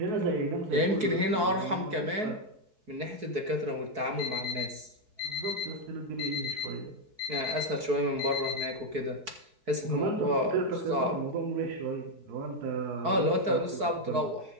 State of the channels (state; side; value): late; left; 4.6 ms